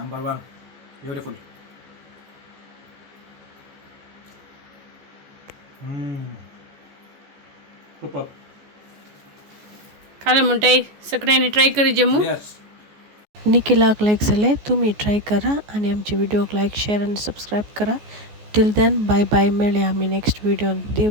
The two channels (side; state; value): left; late; 14 ms